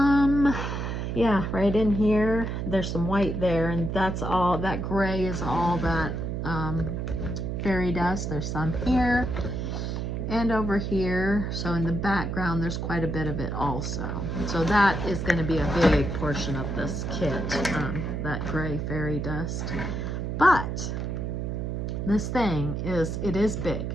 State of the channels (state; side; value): noise; right; hum, 3 dB below the sound